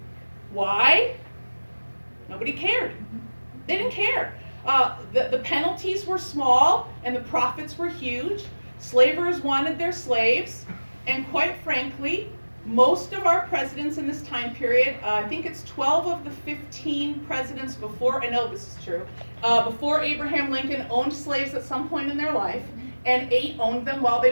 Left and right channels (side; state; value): both; inverted; correlation -1.00